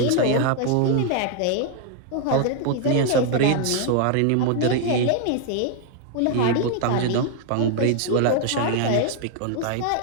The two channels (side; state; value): both; different; correlation 0.00